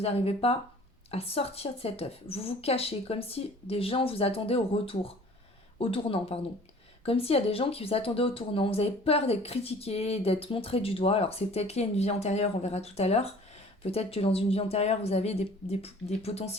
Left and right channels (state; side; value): normal; both; correlation 0.49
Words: n'arrivez pas à sortir de cet œuf. Vous vous cachez, comme si des gens vous attendaient au tournant, pardon. Comme s'il y a des gens qui vous attendaient au tournant. Vous avez peur d'être critiqué, d'être montré du doigt. Alors c'est peut-être lié à une vie antérieure, on verra tout à l'heure. Peut-être que dans une vie antérieure, vous avez des